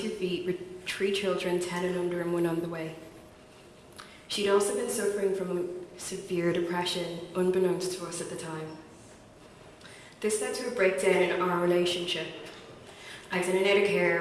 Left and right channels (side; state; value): both; identical; correlation 1.00